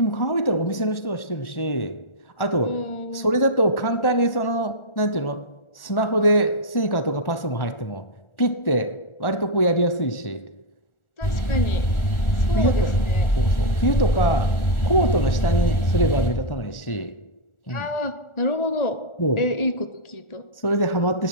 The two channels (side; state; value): right; late; 1.4 ms